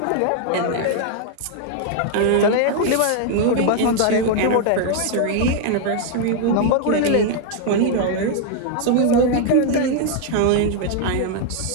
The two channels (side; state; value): both; different; correlation 0.00